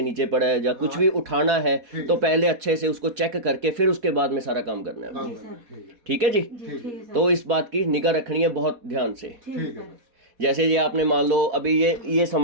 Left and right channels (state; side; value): late; left; 4.2 ms